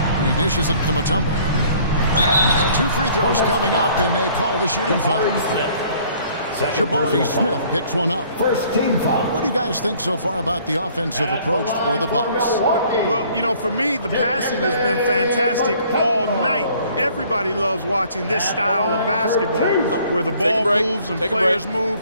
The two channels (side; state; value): both; inverted; correlation -0.57